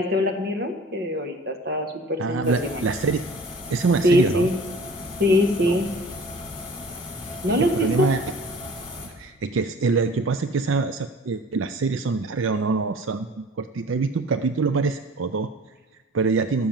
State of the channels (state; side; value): normal; both; correlation 0.45